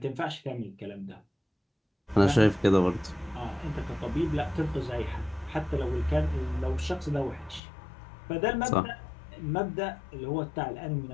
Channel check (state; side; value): drops out; right; at 7.6 s